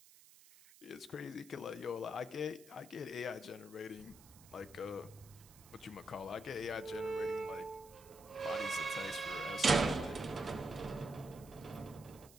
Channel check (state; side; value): noise; right; hiss, 22 dB below the sound